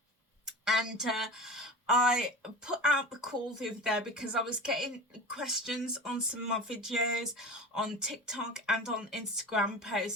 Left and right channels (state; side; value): normal; both; correlation 0.32